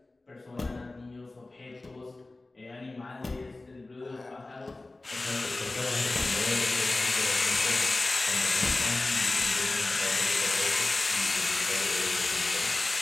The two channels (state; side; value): quieter; right; 3.1 dB